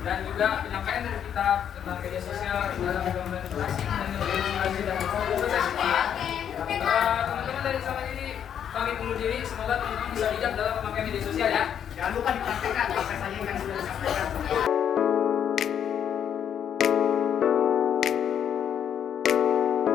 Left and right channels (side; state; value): right; quieter; 8.9 dB